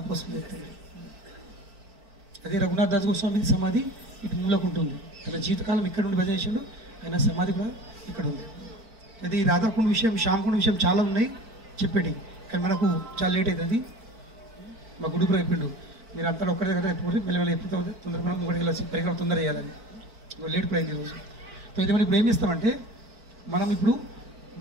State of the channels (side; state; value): left; late; 4.5 ms